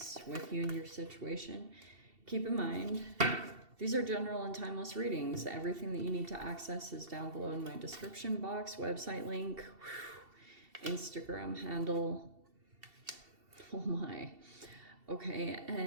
with you and your situation. Keep in mind, these are general and timeless readings. Everything that you need to access is down below in my description box, website link, Instagram handle. Oh my. Okay,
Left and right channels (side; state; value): left; late; 2.7 ms